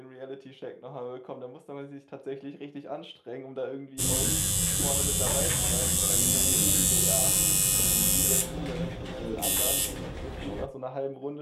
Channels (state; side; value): identical; both; correlation 1.00